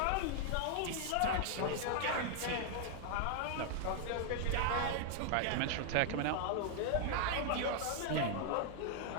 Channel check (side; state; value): both; different; correlation 0.00